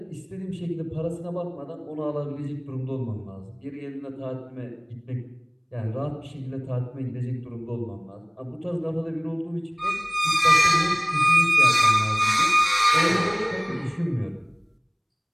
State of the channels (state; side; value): identical; both; correlation 1.00